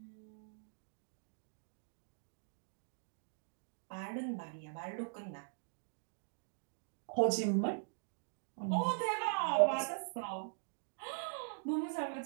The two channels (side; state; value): left; silent; digital silence